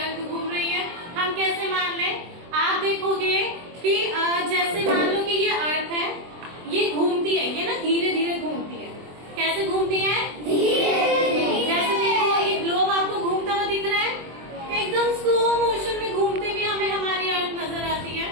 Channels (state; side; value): late; left; 23 ms